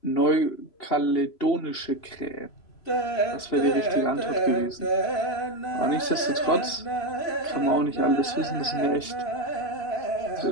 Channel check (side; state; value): right; late; 2.8 ms